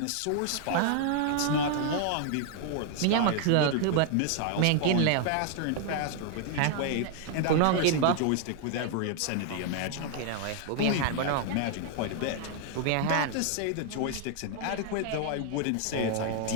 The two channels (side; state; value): both; different; correlation 0.00